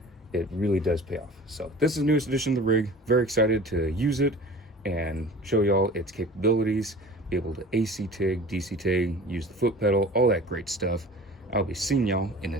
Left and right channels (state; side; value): normal; both; correlation 0.42